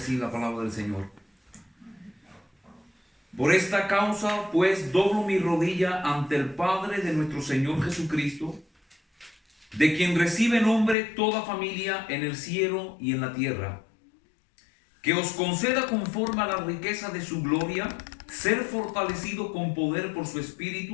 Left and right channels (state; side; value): drops out; right; at 11.0 s